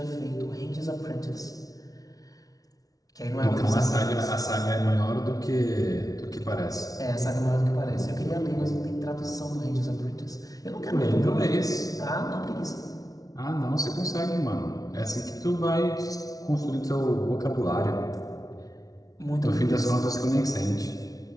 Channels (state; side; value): late; right; 0.18 ms